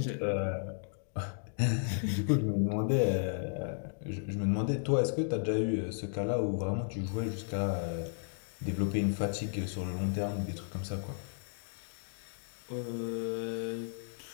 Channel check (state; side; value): silent; right; digital silence